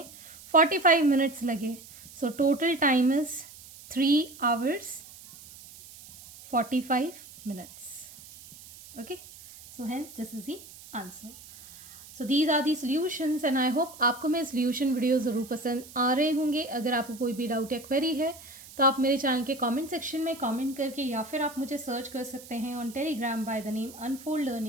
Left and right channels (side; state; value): right; noise; hiss, 18 dB below the sound